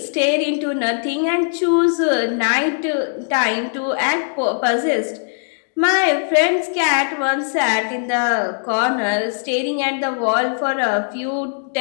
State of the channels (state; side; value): silent; right; digital silence